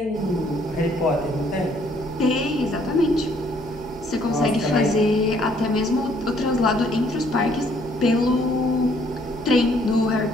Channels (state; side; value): noise; right; hum, 18 dB below the sound